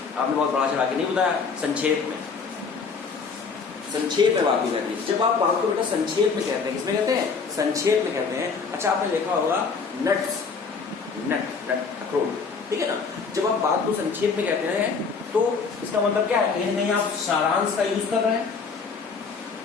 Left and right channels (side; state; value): right; quieter; 5.1 dB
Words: आपने बहुत बड़ा चढ़ा के नहीं बताया, संक्षेप में, संक्षेप में बात को कहते हैं। जब आप बात को बेटा संक्षेप में कहते हैं, किसमें कहते हैं, संक्षेप में कहते हैं। अच्छा आपने देखा होगा नट्स, नट, अखरोट, ठीक है ना। जब आप बात को संक्षेप में कहते हैं तो इसका मतलब क्या है, कहीं ना कहीं आप सारांश का यूज कर रहे हैं।